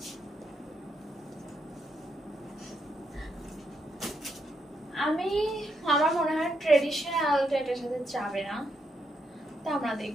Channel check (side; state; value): both; normal; correlation 0.79